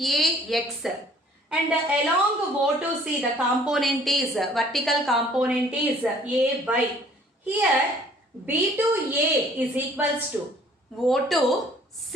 and along O to C the component is vertical component is AY. Here B to A is equals to O to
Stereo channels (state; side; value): normal; both; correlation 0.56